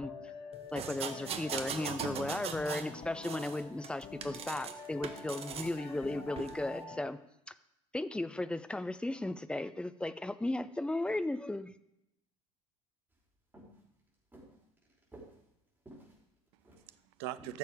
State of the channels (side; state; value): both; normal; correlation 0.81